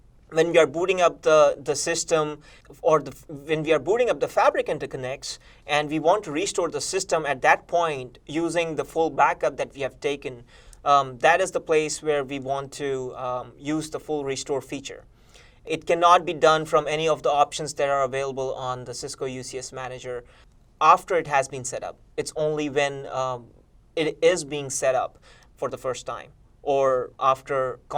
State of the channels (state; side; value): identical; both; correlation 1.00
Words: When we are booting up the system or when we are booting up the Fabric interconnects and we want to restore the system at that point using the full backup that we have taken, that is the place where we want to use the full restore feature. It cannot be done from any of the options that are available on the Cisco UCS Manager after it has been set up. It's only when it is being set up for the first time or after